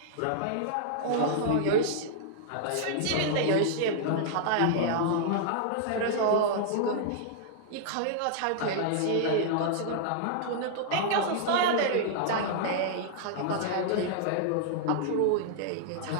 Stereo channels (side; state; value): both; different; correlation -0.01